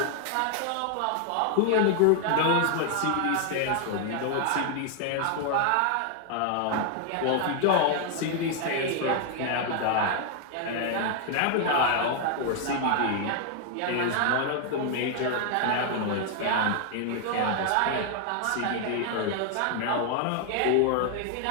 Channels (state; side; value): different; both; correlation 0.00